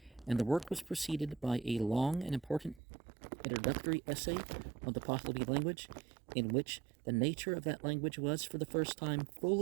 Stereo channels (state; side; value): drops out; left; at 2.8 s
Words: and the work was preceded by a long and important introductory essay on the Pahlavi language, in which the nature of that language was for the first time